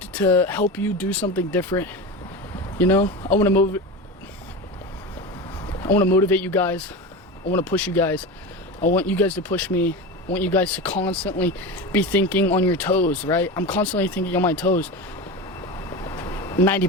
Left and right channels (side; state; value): both; normal; correlation 0.25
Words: help you do something different. You know, I want to motivate you guys. I want to push you guys. I want you guys to push me. I want you guys to constantly be thinking on your toes, right? I'm constantly thinking on my toes